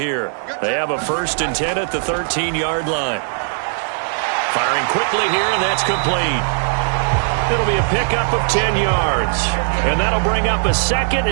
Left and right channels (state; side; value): silent; left; digital silence